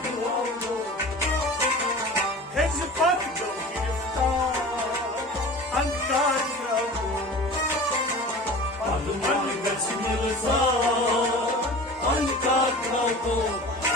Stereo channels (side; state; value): both; normal; correlation 0.38